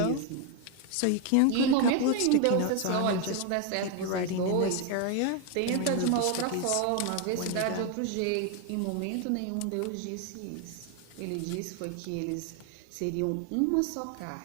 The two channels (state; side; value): different; both; correlation 0.01